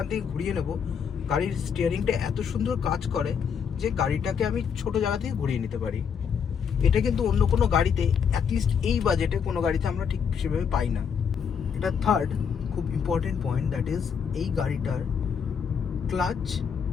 থেকে ঘুরিয়ে নেবো, গাড়ির স্টিয়ারিংটা এত সুন্দর কাজ করে যে গাড়িটাকে আমি ছোট জায়গা থেকে ঘুরিয়ে নিতে পারি। এটা কিন্তু অন্য কোনো গাড়িতে, অ্যাটলিস্ট এই বাজেটে কোনো গাড়িতে আমরা ঠিক সেভাবে পাই না। এটা থার্ড খুব ইম্পর্টেন্ট পয়েন্ট, দ্যাট ইজ এই গাড়িটার ক্লাচ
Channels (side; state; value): right; quieter; 6.9 dB